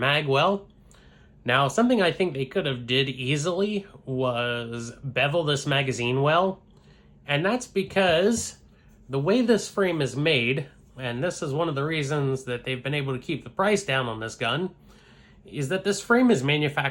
well. Now, something I think they could have did easily was bevel this magazine well. And that's because the way this frame is made, and this is one of the reasons that they've been able to keep the price down on this gun, is that this frame is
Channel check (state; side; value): identical; both; correlation 1.00